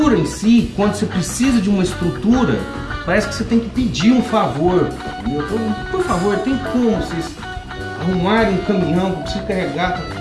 em si, quando você precisa de uma estrutura, parece que você tem que pedir um favor. Entendeu? Por favor, tem como vocês arrumarem um caminhão para você carregar?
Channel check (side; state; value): both; identical; correlation 1.00